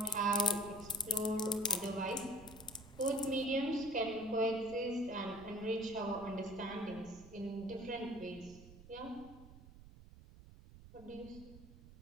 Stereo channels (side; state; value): right; noise; rumble, 18 dB below the sound